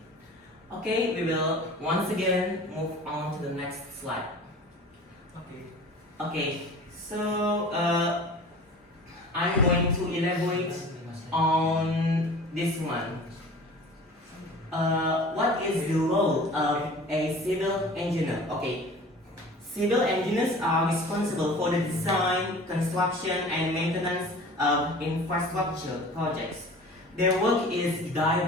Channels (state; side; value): normal; both; correlation 0.42